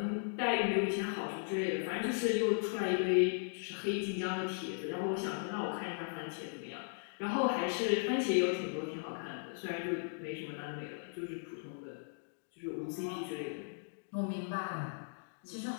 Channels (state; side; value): silent; right; digital silence